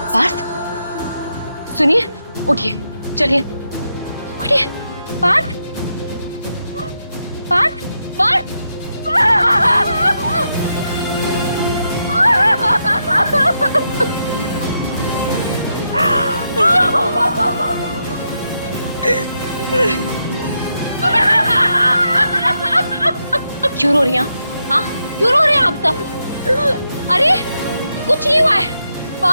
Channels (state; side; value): inverted; both; correlation -0.83